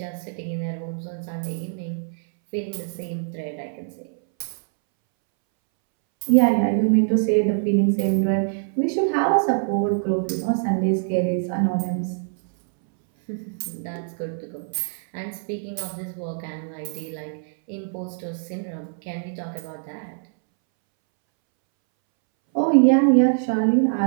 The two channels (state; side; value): silent; left; 63 dB below the other